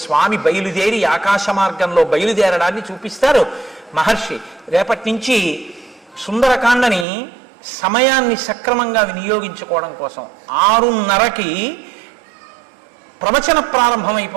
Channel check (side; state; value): left; drops out; at 7.1 s